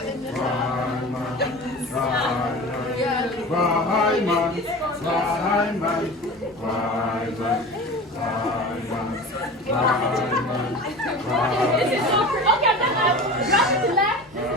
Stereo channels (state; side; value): normal; both; correlation 0.34